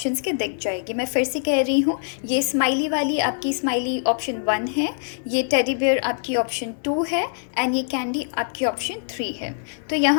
के दिख जाएगी। मैं फिर से कह रही हूँ, ये स्माइली वाली आपकी स्माइली ऑप्शन 1 है, ये टेडी बियर आपकी ऑप्शन 2 है एंड ये कैंडी आपकी ऑप्शन 3 है। तो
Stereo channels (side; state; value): right; silent; 63 dB below the other